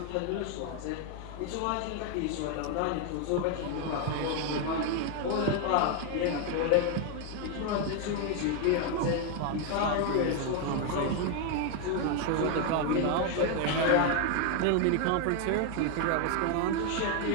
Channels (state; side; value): different; both; correlation 0.01